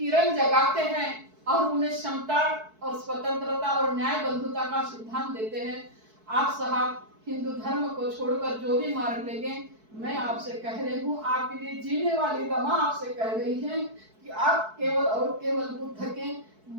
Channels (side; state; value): left; late; 4.6 ms